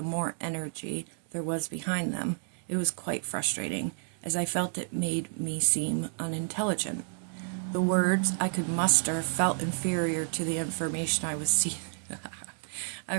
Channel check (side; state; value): left; silent; digital silence